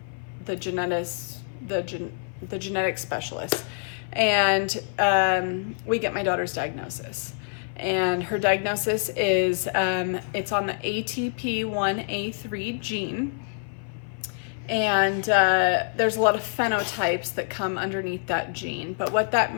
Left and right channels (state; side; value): silent; right; 56 dB below the other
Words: specialist, and we get my daughter's diagnosis. And her diagnosis is it's on the ATP1A3 gene. And there's a lot of phenotypes that come underneath that gene. But what that